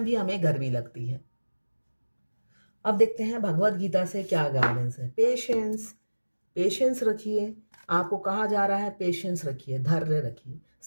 भी हमें गर्मी लगती है। अब देखते हैं भगवत गीता से क्या गाइडेंस है। पेशेंस, पेशेंस रखिए। आपको कहा जा रहा है पेशेंस रखिए, धैर्य रखिए,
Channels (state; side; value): inverted; both; correlation -1.00